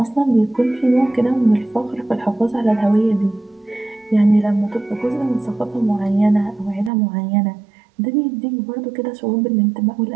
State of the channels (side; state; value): left; drops out; at 6.9 s